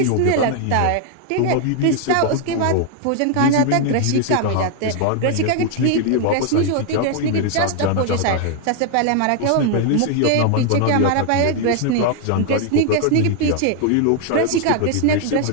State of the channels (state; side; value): different; both; correlation 0.00